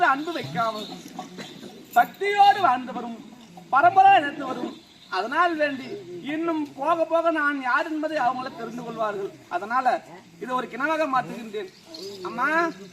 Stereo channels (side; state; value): both; identical; correlation 1.00